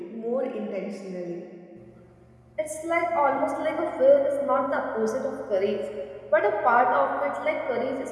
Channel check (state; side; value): identical; both; correlation 1.00